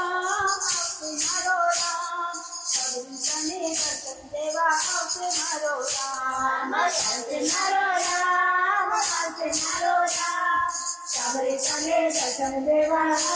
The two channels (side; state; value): both; identical; correlation 1.00